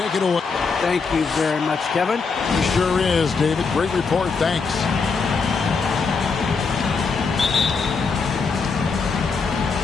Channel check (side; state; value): right; quieter; 4.9 dB